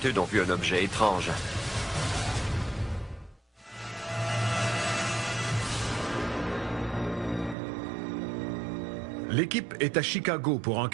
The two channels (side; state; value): left; drops out; at 7.6 s